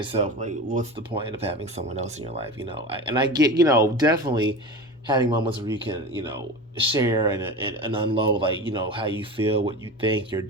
like, what's the point of having someone else in your life? And I get, definitely having moments where you can, share and unload, like, how you feel, what you think, your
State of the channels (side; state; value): both; normal; correlation 0.29